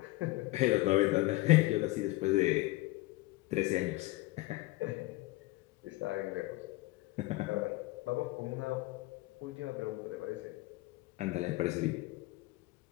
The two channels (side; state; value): right; quieter; 20.2 dB